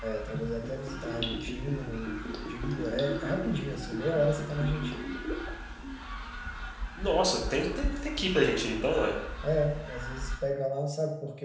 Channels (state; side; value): identical; both; correlation 1.00